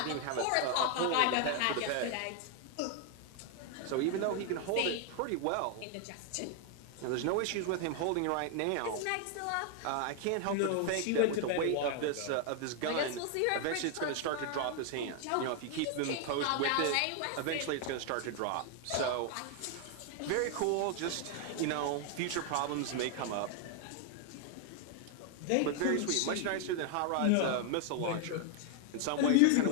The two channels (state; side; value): different; both; correlation 0.00